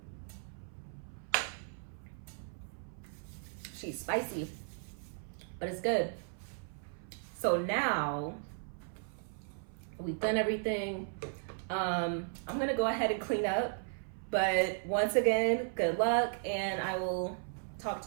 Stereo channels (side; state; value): left; silent; 54 dB below the other